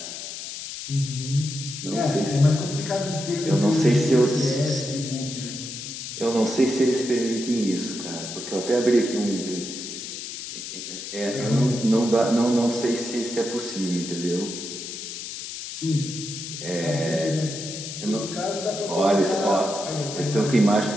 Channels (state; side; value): noise; left; hiss, 8 dB below the sound